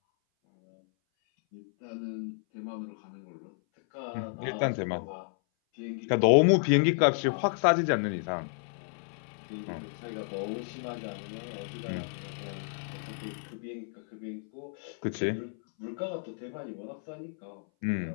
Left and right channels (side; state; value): right; silent; 57 dB below the other